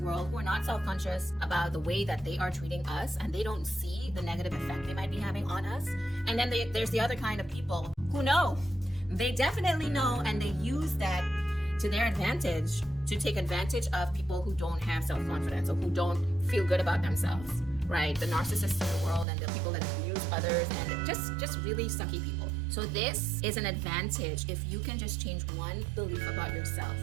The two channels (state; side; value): drops out; left; at 19.2 s